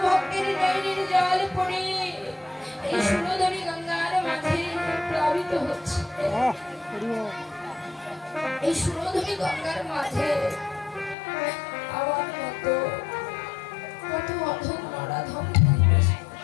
ভক্তের নয়নের জল পড়ে এই সুরধনী গঙ্গার মাঝে প্লাবিত হচ্ছে। এই সুরধনী গঙ্গার মাঝে আমার মতো কত অধম নরাধম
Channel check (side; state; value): right; drops out; at 11.2 s